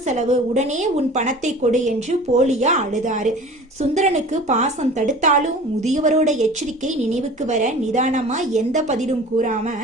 செலவு, உடனே உன் பணத்தை கொடு என்று போலியா அழுதாரு. சுந்தரனுக்கு பாசம் தடுத்தாலும் முதியவரோட எச்சரிக்கை நினைவுக்கு வர நிதானமா எந்த பதிலும் கூறாம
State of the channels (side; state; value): both; normal; correlation 0.42